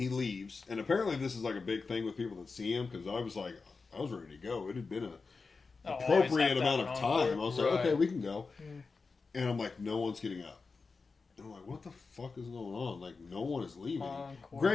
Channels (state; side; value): quieter; right; 4.4 dB